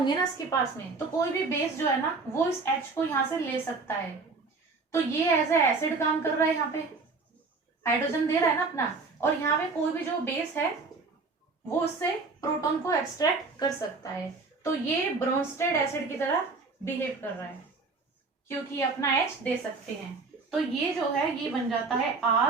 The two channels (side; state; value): left; quieter; 4.1 dB